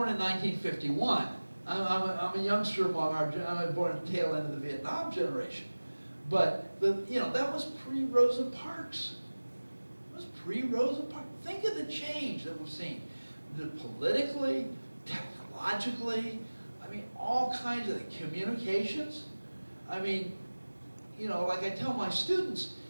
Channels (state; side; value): inverted; both; correlation -1.00